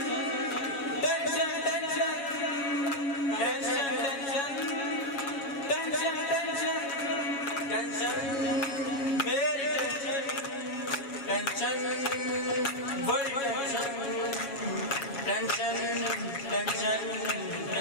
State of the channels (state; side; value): late; right; 7.2 ms